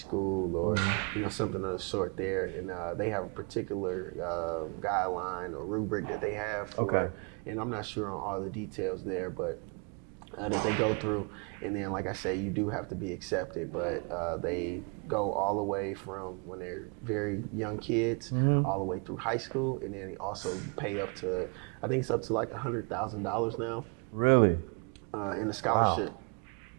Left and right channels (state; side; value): quieter; left; 35.0 dB